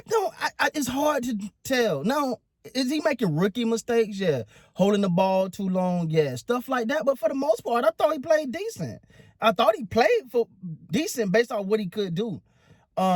don't. It's hard to tell. Now, is he making rookie mistakes? Yeah. Holding the ball too long? Yeah. Stuff like that. But for the most part, I thought he played decent. I thought he played for decent based on what he could do.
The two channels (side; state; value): both; identical; correlation 1.00